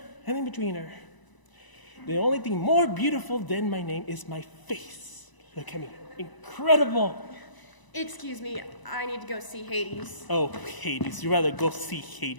and in betweener. The only thing more beautiful than my name is my face. Look at me. Incredible. Excuse me, I need to go see Hades. Oh, Hades. You'd rather go see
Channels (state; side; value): late; right; 1.0 ms